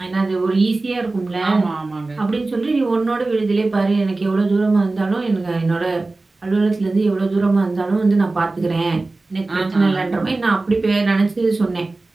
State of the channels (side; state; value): left; quieter; 3.3 dB